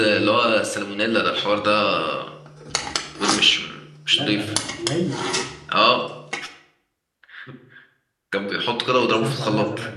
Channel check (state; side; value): identical; both; correlation 1.00